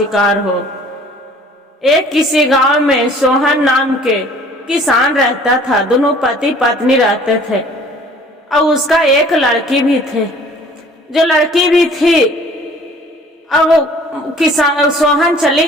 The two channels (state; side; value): normal; both; correlation 0.51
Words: हो। एक किसी गांव में सोहन नाम के किसान रहता था। दोनों पति पत्नी रहते थे और उसका एक लड़की भी थे। जो लड़की भी थी, अब किसान सोहन चले